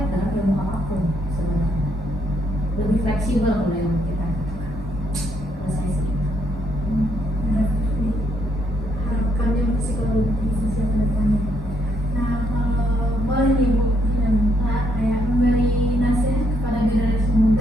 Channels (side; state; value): both; normal; correlation 0.73